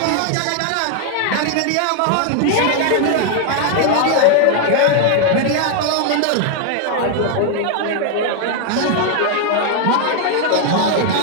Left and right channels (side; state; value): both; different; correlation 0.00